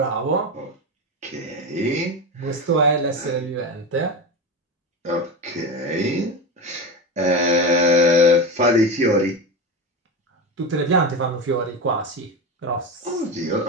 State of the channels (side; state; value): both; normal; correlation 0.21